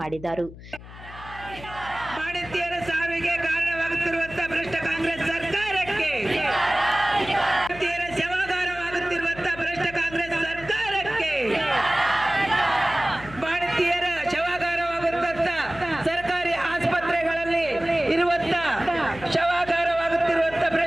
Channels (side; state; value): left; noise; hum, 16 dB below the sound